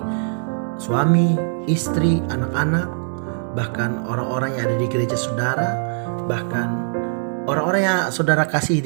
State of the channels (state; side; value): silent; left; digital silence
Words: suami, istri, anak-anak, bahkan orang-orang yang ada di gereja saudara, bahkan orang-orang yang saudara kasih